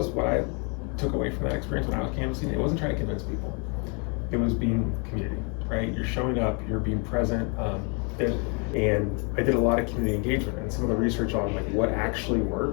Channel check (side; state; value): right; quieter; 35.2 dB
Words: what I took away from that experience when I was canvassing. It wasn't trying to convince people. It was being community, right? You're showing up, you're being present. And I did a lot of community engagement and some of the research on like what actually